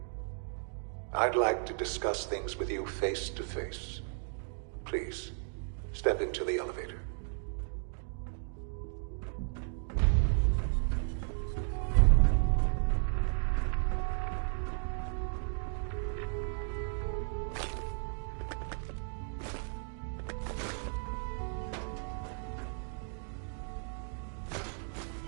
I'd like to discuss things with you face to face. Please, step into the elevator.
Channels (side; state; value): left; silent; 55 dB below the other